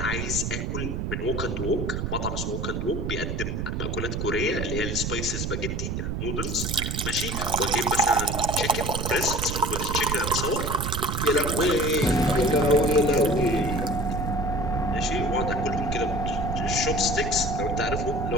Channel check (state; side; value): noise; right; rumble, 2 dB below the sound